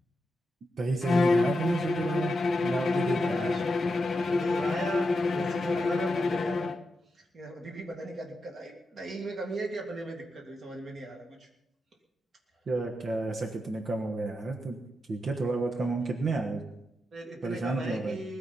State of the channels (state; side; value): normal; both; correlation 0.86